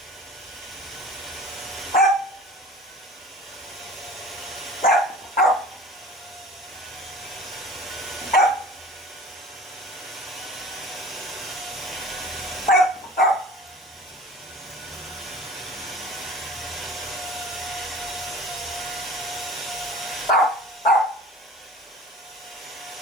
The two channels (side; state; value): both; normal; correlation 0.43